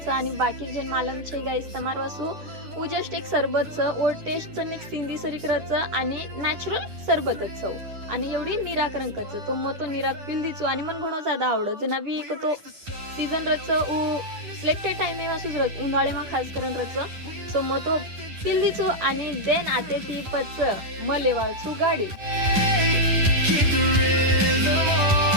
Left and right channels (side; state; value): left; late; 10 ms